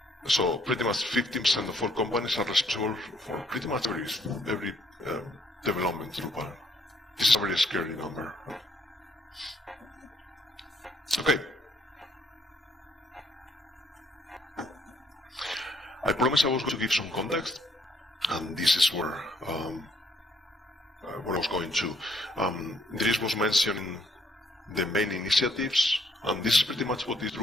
So pretty much 15% of all companies are responsible for pretty much every development Drupal. This is a very scary number. Okay. I promised I was going to give some context, and this is where I was going to. Dries was mentioning the main initiatives, and this is pretty much what is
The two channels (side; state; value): both; normal; correlation 0.68